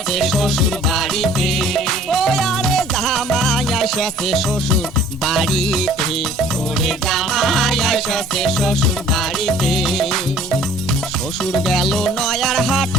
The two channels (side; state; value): both; normal; correlation 0.53